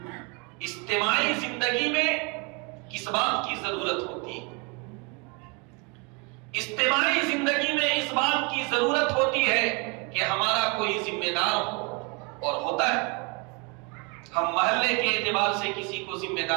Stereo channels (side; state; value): left; quieter; 31.5 dB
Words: اجتماعی زندگی میں کس بات کی ضرورت ہوتی ہے. اجتماعی زندگی میں اس بات کی ضرورت ہوتی ہے کہ ہمارا کوئی ذمہ دار ہو، اور ہوتا ہے. ہم محلے کے اعتبار سے کسی کو ذمہ